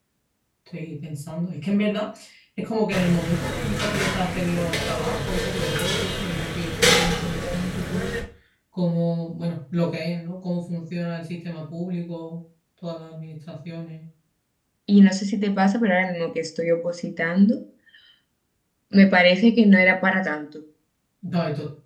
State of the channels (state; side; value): identical; both; correlation 1.00